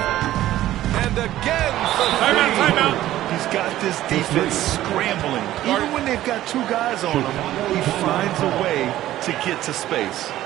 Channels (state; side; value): quieter; left; 14.0 dB